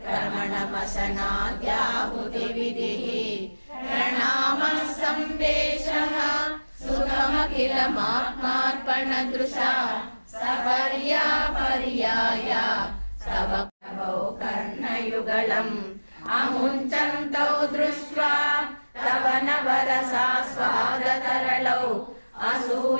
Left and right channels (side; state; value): both; inverted; correlation -1.00